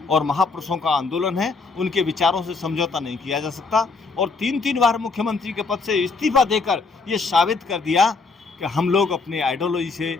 और महापुरुषों का आंदोलन है, उनके विचारों से समझौता नहीं किया जा सकता। और 3 बार मुख्यमंत्री के पद से इस्तीफा देकर ये साबित कर दिया कि हम लोग अपने आइडियोलॉजी से,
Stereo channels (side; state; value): right; quieter; 4.2 dB